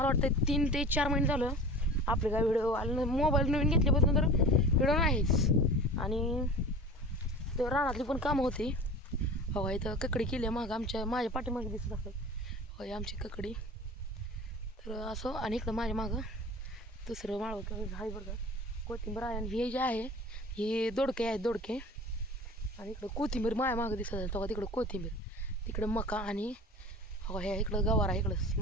वाटतं 3 ते 4 महिने झालं आपले काय व्हिडिओ आले. मोबाईल नवीन घेतल्यापासून तर व्हिडिओ नाहीच. आणि तर रानातली पण कामं होती. हो, इथं ककडी केली आहे माझ्या पाठीमागे दिसत असेल. होय, आमची ककडी. तर असं आणि इकडं माझ्या मागं दुसरं माळवं आहे बरं का, कोथिंबीर आहे. आणि हे जे आहे हे दोडके आहेत, दोडके. आणि इकडं कोथिंबीर माझ्या मागं दिसत असेल. तेव्हा तिकडं कोथिंबीर, तिकडं मका. आणि हो, ह्या इकडं गवार आहे. इकडं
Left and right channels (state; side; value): normal; both; correlation 0.38